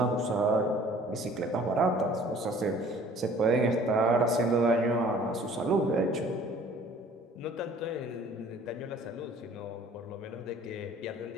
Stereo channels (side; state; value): both; normal; correlation 0.52